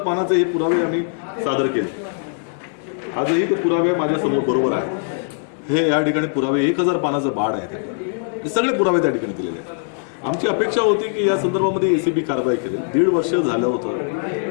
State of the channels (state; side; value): silent; right; 61 dB below the other